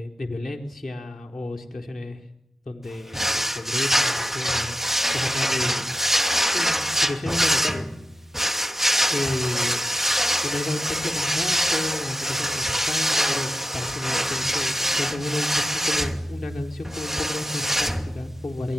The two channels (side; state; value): both; normal; correlation 0.89